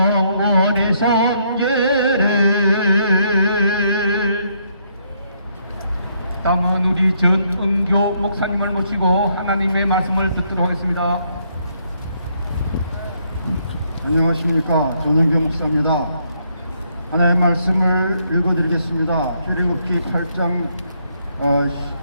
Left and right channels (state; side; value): inverted; both; correlation -0.72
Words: 섬기리. 다음은 우리 전은교 목사님을 모시고 하나님의 말씀을 듣도록 하겠습니다. 안녕하십니까. 전은교 목사입니다. 하나님의 말씀을 읽어드리겠습니다. 출애굽기 8장